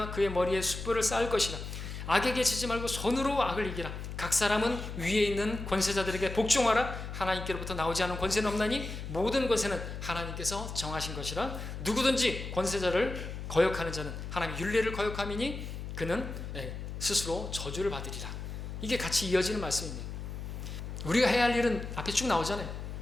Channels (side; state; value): left; noise; hum, 7 dB below the sound